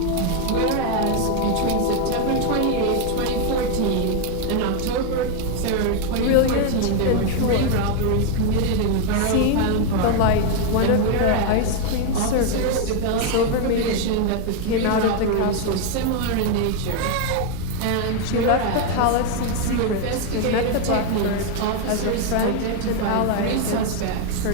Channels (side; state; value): both; different; correlation 0.01